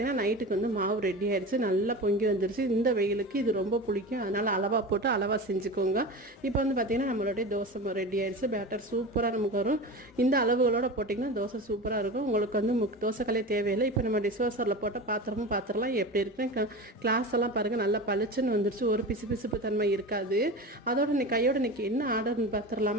நைட்டுக்கு வந்து மாவு ரெடி ஆயிடுச்சு, நல்லா பொங்கி வந்துருச்சு. இந்த வெயிலுக்கு இது ரொம்ப பிடிக்கும், அதனால் அளவாக போட்டு அளவாக செஞ்சுக்கோங்க. இப்போ வந்து பார்த்திங்கன்னா நம்மளுடைய தோசை ரெடி ஆயிடுச்சு. பேட்டர் சூப்பராக நமக்கு வரும். இந்த அளவுகளோடு போட்டிங்கன்னா தோசை சூப்பராக இருக்கும். உங்களுக்கு வந்து தோசைக்கல்லே தேவையில்லை. இப்போ நம்ம டிஸ்வாசரில் போட்ட பாத்திரம்லாம் எப்படி இருக்குன்னு கிளாஸ் எல்லாம் பாருங்கள், நல்லா பளிச்சுன்னு வந்துருச்சு. ஒரு பிசுப்பு தன்மை இருக்காது. அதோட கையோட இன்றைக்கி என்ன ஆர்டர்னு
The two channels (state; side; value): normal; both; correlation 0.29